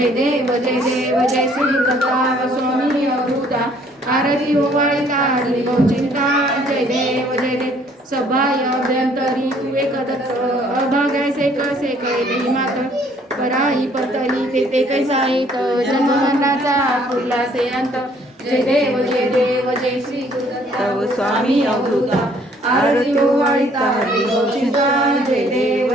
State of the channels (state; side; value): normal; both; correlation 0.61